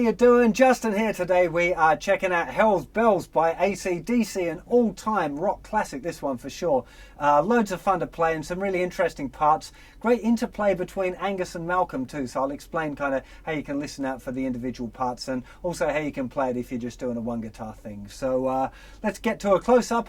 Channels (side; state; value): both; identical; correlation 1.00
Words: doing? Justin here. Today we are checking out Hell's Bells by AC/DC, an all-time rock classic, this one for sure. Loads of fun to play and some really interesting parts. Great interplay between Angus and Malcolm too, so I'll explain kind of how you can listen out for the individual parts and also how you can play it if you're just doing a one guitar thing. So let's get to a close-up